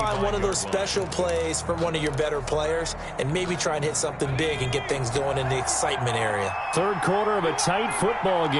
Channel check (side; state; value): both; identical; correlation 1.00